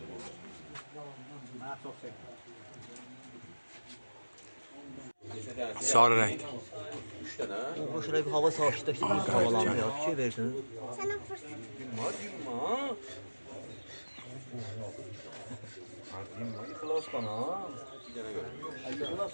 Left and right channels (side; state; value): both; inverted; correlation -1.00